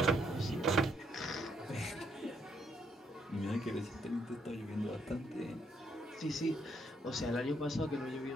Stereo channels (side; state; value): both; normal; correlation 0.73